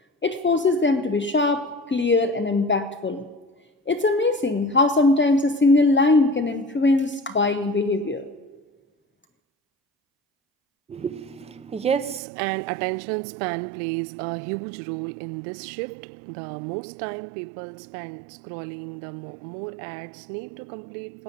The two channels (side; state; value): left; drops out; at 12.2 s